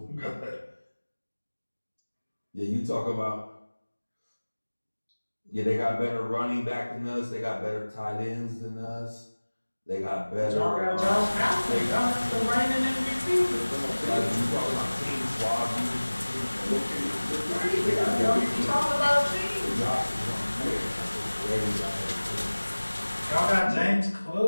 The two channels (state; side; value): inverted; both; correlation -1.00